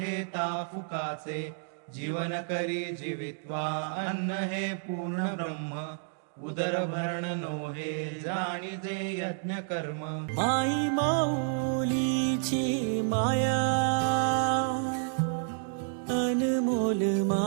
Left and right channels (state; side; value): silent; left; digital silence